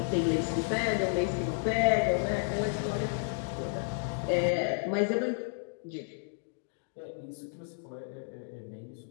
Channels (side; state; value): right; silent; digital silence